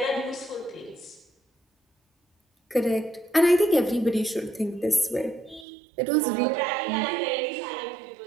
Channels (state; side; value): drops out; left; at 5.7 s